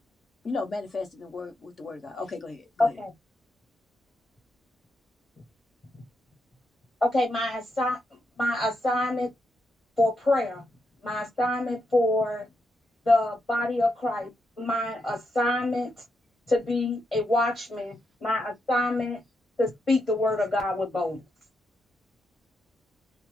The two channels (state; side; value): normal; both; correlation 0.83